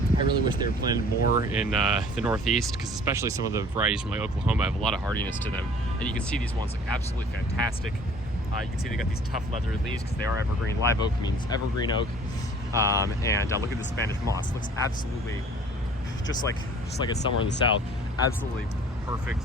really wish they were planted more in the Northeast, because especially some of the varieties from like Oklahoma have a lot of hardiness to them, and you can see these ones look absolutely fantastic. You can see they got these tough leathery leaves because they are evergreen. Live oak means evergreen oak. And look at the Spanish moss. It looks absolutely just like it's somewhere in the South. Absolutely perfect,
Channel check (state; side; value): normal; both; correlation 0.50